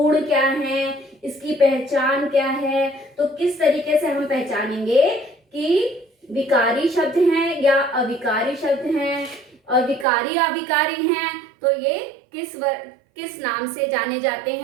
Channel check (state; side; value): drops out; left; at 10.1 s